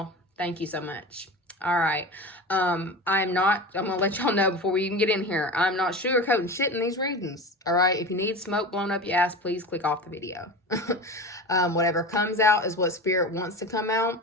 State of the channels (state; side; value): normal; both; correlation 0.30